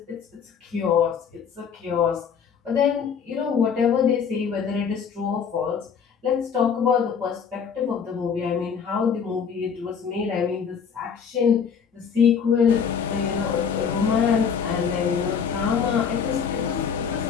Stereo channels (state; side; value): quieter; right; 6.8 dB